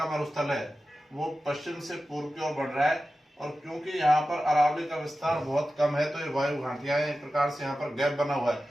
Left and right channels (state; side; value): normal; both; correlation 0.94